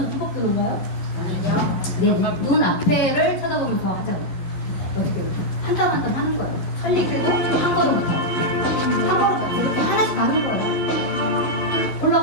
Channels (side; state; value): right; late; 11 ms